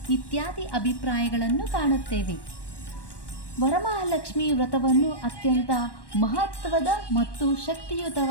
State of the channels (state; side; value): late; right; 1.1 ms